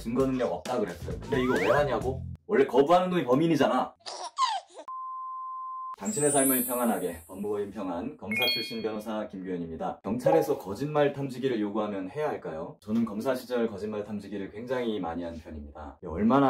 능력 없다 그랬어요. 근데 이거 왜 하냐고? 원래 거부하는 놈이 범인이잖아. 당신의 삶을 평안하게, 법무법인 평안, 검사 출신 변호사 김규현입니다. 경찰에서 거짓말 탐지기를 요구하면 해야 할까요? 저는 검사 시절 거짓말 탐지기를 굉장히 많이 한 편입니다. 얼마나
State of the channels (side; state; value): both; identical; correlation 1.00